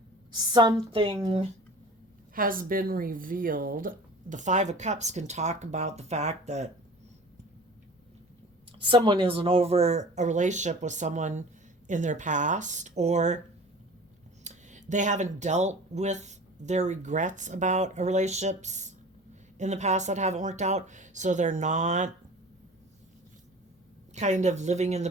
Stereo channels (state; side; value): normal; both; correlation 0.41